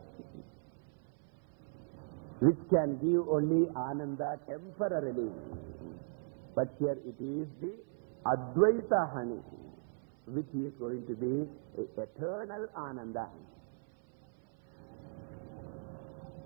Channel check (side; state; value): left; silent; 53 dB below the other